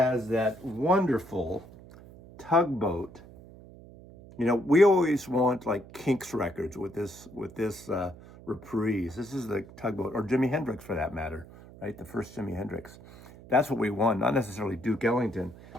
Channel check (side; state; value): right; noise; hum, 19 dB below the sound